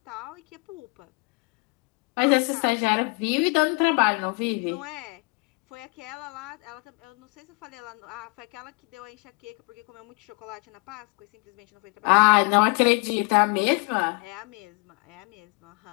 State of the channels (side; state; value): right; quieter; 30.6 dB